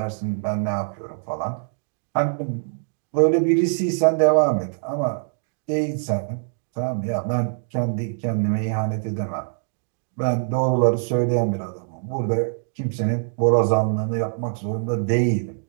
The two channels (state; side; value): silent; left; digital silence